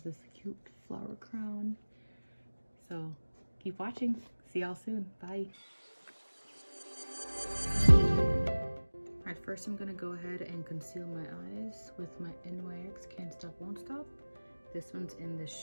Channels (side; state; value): both; inverted; correlation -1.00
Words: this cute flower crown. So keep watching. See y'all soon. Bye. Alright, first I'm gonna go ahead and conceal my eyes with my NYX Can't Stop Won't Stop. This one's in the